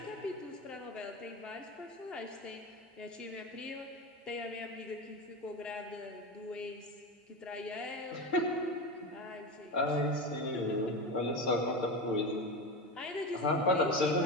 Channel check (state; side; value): normal; both; correlation 0.22